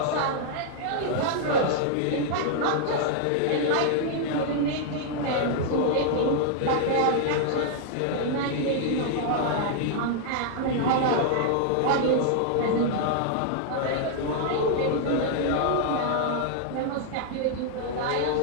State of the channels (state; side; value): different; both; correlation -0.01